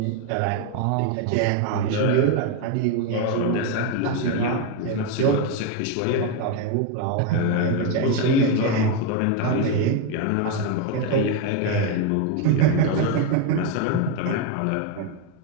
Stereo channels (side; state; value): both; different; correlation 0.02